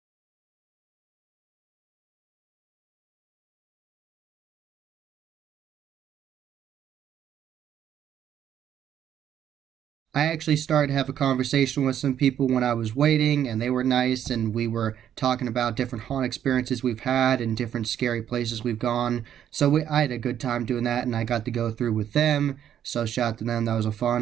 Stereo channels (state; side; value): quieter; left; 10.0 dB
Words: I actually started to have a conversation with some people when I was waiting, and they were nice, and we were talking about different haunt experiences we've had and different scary places we've gone. So I had a good time doing that, and I got to go through with them. So shout out to them. That was a